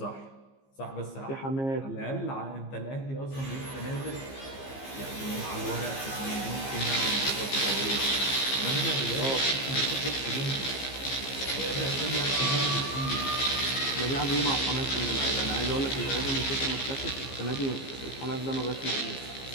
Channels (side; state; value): right; late; 15 ms